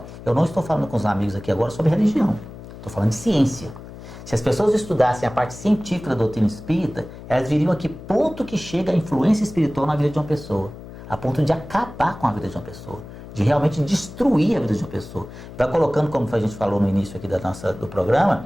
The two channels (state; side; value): noise; left; hum, 15 dB below the sound